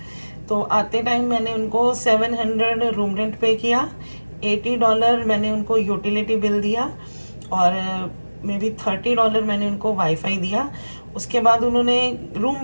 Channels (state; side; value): inverted; both; correlation -1.00